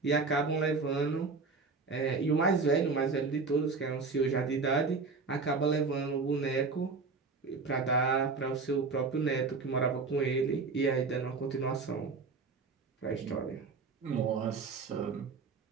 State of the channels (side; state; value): left; quieter; 4.4 dB